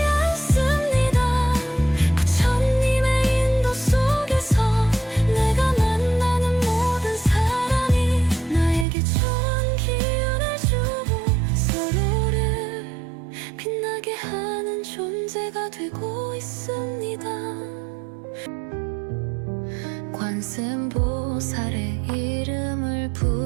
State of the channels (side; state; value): left; drops out; at 8.8 s